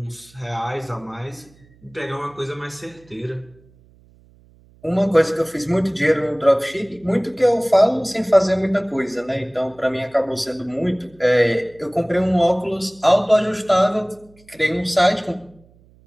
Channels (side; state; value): right; noise; hum, 29 dB below the sound